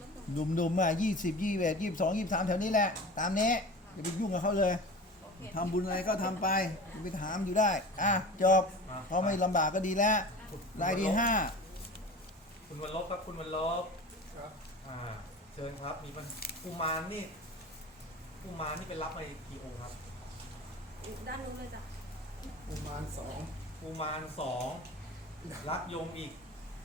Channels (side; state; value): both; normal; correlation 0.35